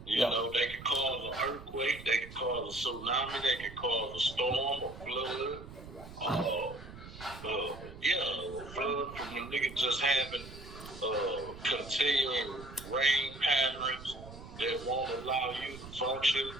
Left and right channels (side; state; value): right; noise; rumble, 14 dB below the sound